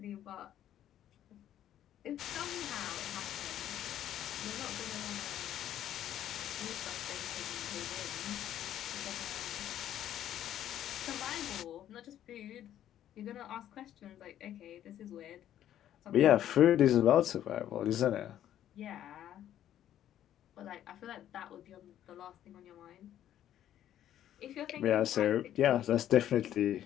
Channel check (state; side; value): quieter; right; 11.4 dB